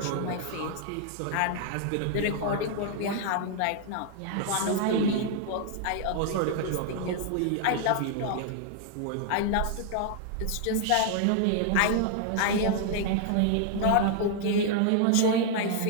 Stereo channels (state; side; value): different; both; correlation 0.00